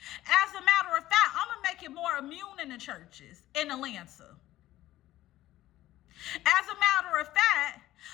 As a matter of fact, I'm going to make it more immune in the churches in Atlanta. As a matter of fact,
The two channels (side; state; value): right; quieter; 14.9 dB